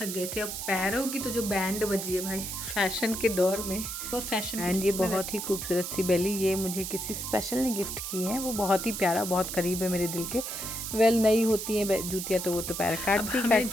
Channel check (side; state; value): right; noise; hiss, 5 dB below the sound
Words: गए थे। अब पैरों की तो जो बैंड बजी है भाई, फैशन के दौर में और फैशन। एंड ये बहुत ही खूबसूरत सी बेली, ये मुझे किसी स्पेशल ने गिफ्ट की है। वो बहुत ही प्यारा, बहुत करीब है मेरे दिल के। वेल नई होती हैं जूतियाँ तो वो तो पैर काटती